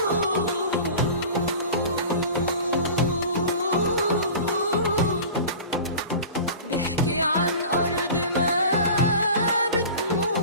بيحكي عن أرض ما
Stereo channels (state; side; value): inverted; both; correlation -0.37